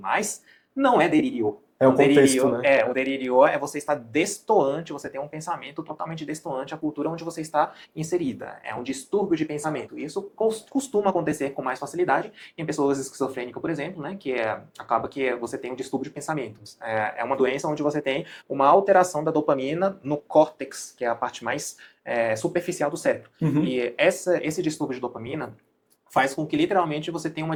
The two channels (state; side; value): identical; both; correlation 1.00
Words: não é delírio. É o contexto, né? O delírio é você estar destoante, você tem um pensamento totalmente destoante à cultura onde você está inserida. É um distúrbio de pensamento. Isso costuma acontecer com mais facilidade em pessoas esquizofrênicas, por exemplo, né? Acaba que você tem um distúrbio de pensamentos. É uma doença onde você tem uma alteração da dopamina no córtex, que é a parte mais superficial do cérebro. Uhum. E esse distúrbio de dopamina faz com que literalmente você tenha uma